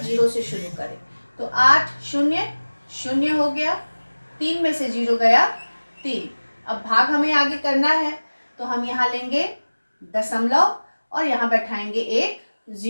0 से शुरू करें। तो 8 0 0 हो गया, 3 में से 0 गया 3। अब भाग हमें आगे करना है, तो हम यहाँ लेंगे दशमलव और यहाँ बैठाएंगे एक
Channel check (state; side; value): inverted; both; correlation -1.00